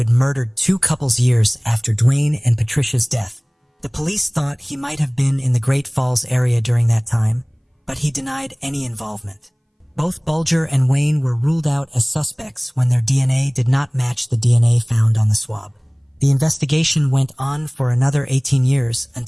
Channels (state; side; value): identical; both; correlation 1.00